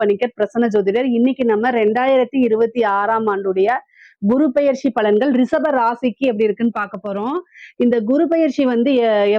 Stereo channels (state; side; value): identical; both; correlation 1.00